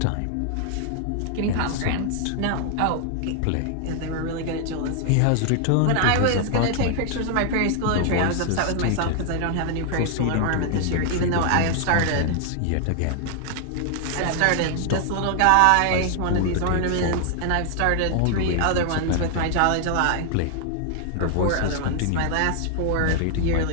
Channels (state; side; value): different; both; correlation 0.00